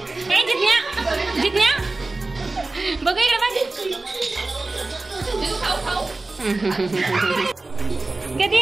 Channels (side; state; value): left; quieter; 3.3 dB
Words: ए जिज्ञा जिज्ञा बघू इकडे बघ. कधी